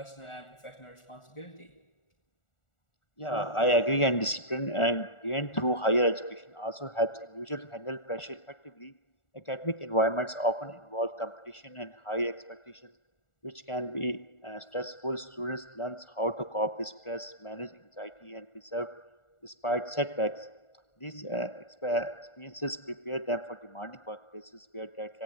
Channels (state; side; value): late; right; 1.4 ms